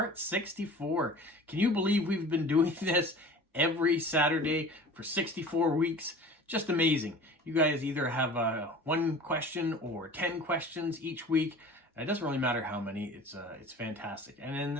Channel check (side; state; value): both; normal; correlation 0.41